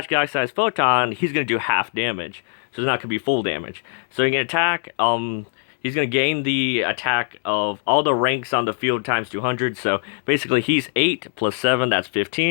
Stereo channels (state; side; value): silent; right; digital silence